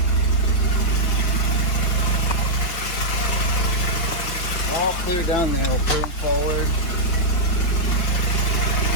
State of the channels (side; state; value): right; late; 5.6 ms